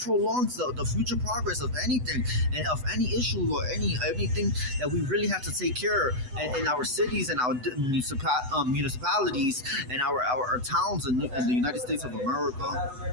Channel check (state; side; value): late; left; 8.0 ms